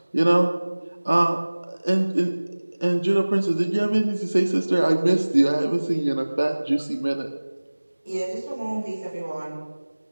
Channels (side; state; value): both; inverted; correlation -1.00